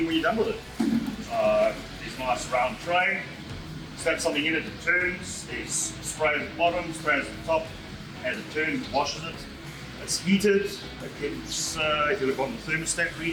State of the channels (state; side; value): identical; both; correlation 1.00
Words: when you're done with it. There's a nice round tray, slap something in it, it turns, there's spray at the bottom, spray at the top. As it turns, it washes it. It's heated, it keeps, if you look on the thermostat